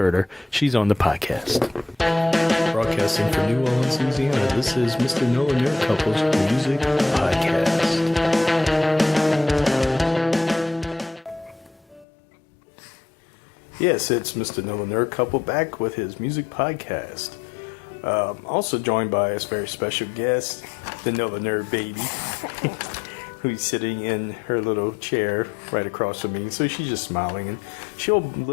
her. She's on the podcast. Broadcasting from New Orleans, Louisiana, this is Mr. Nola Nerd Couple's Music Podcast. Yes, it's Mr. Nola Nerd Couple back with his music podcast. Also joined by a very special guest, the Nola Nerd Baby, who's sitting in her little chair right across from me. So she's just smiling, and she'll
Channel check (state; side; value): drops out; right; at 12.1 s